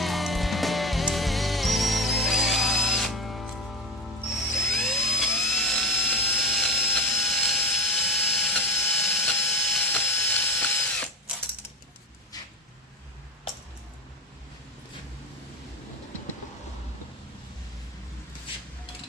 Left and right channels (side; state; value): both; normal; correlation 0.25